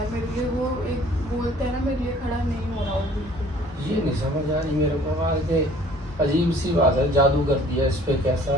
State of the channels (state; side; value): normal; both; correlation 0.53